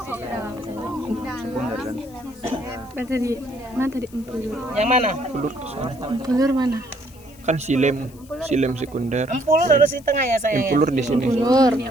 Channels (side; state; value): left; noise; hiss, 25 dB below the sound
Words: Mana tadi empulur? Yang mana? Empulur mana? Kan silem sekunder. Empulur harus di tengah ya sayang. Empulur di sini. Empulur.